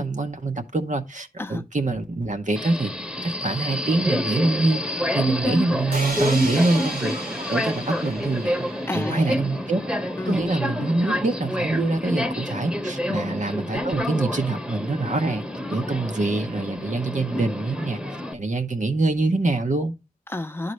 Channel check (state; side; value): normal; both; correlation 0.81